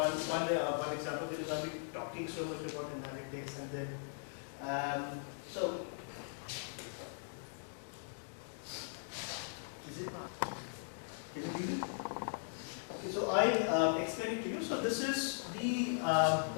example because I've been talking so much about analytics, and then so is it not? Can you read it? Okay, so I explain it to you. So this is the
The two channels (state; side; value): silent; right; digital silence